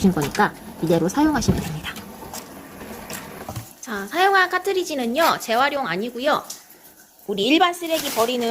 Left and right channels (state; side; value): identical; both; correlation 1.00